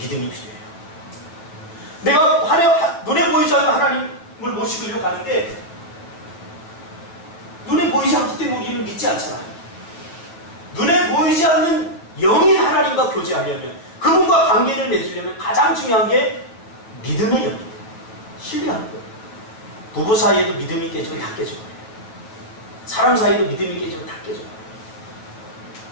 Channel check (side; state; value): right; late; 8.9 ms